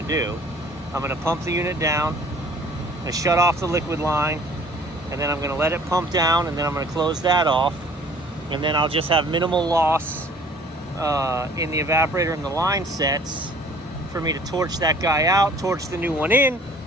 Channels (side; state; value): both; normal; correlation 0.52